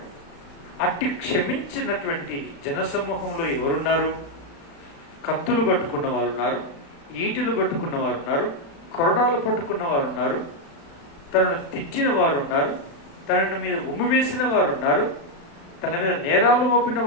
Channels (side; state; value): right; late; 36 ms